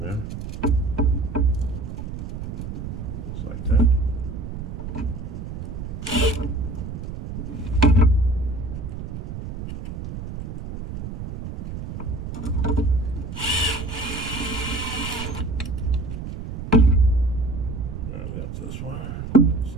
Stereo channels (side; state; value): right; noise; rumble, 7 dB below the sound